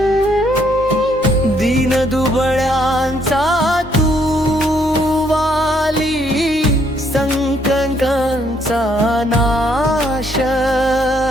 दीन दुबळ्यांचा तू वाली, संकटांचा नाश.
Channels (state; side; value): normal; both; correlation 0.69